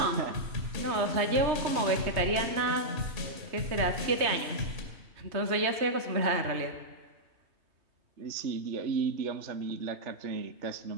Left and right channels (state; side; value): late; left; 3.2 ms